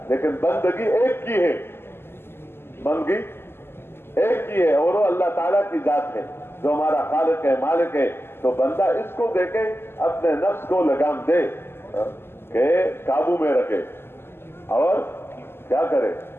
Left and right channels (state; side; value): late; right; 0.12 ms